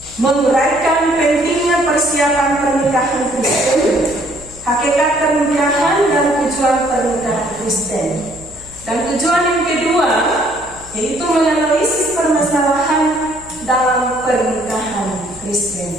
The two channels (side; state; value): left; noise; hum, 20 dB below the sound